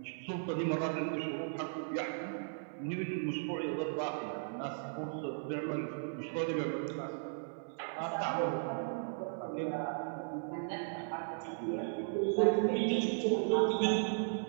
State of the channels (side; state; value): left; silent; 54 dB below the other